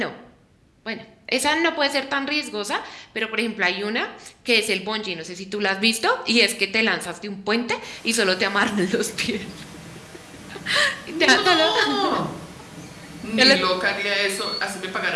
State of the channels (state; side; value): identical; both; correlation 1.00